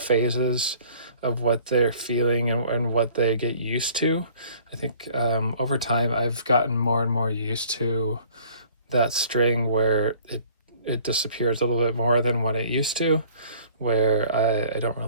of what they're feeling and what they get used to. I think over time I've gotten more and more used to that string where it disappears a little bit more than what it used to, where I don't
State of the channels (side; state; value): both; inverted; correlation -0.52